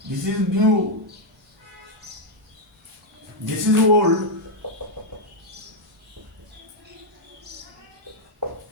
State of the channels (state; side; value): normal; both; correlation -0.01